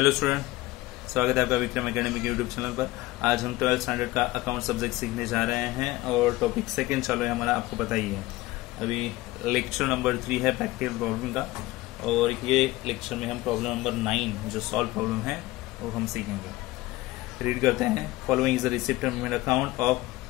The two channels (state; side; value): quieter; right; 18.7 dB